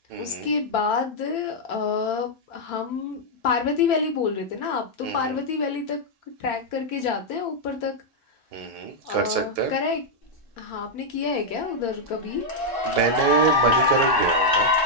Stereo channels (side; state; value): both; normal; correlation -0.03